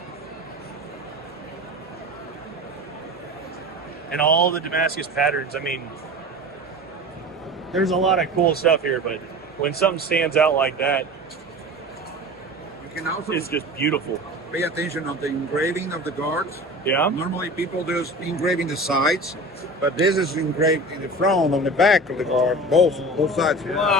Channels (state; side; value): normal; both; correlation 0.35